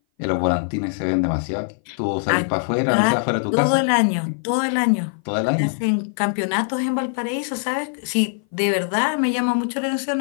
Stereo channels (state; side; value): silent; right; 59 dB below the other